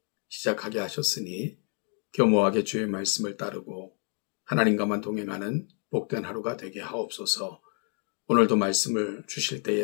시작하게 하셨으니 겸허하게 주의 말씀을 따르고 하나님과만 동행하는 복된 하루가 되게 하옵소서. 오늘도 말씀을 주실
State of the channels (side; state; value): right; quieter; 40.0 dB